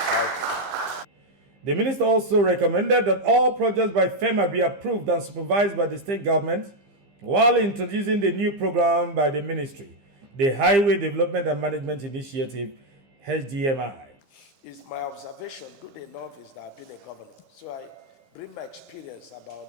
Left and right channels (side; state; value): left; late; 15 ms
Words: The minister also recommended that all projects by FEMA be approved and supervised by the state government, while introducing the new program by the ministry, the Highway Development and Management Initiative, HDMI. It's my observation, good enough, is that I've been a governor. So I bring my experience